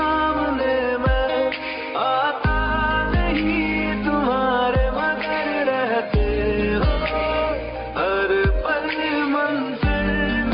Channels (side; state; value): both; identical; correlation 1.00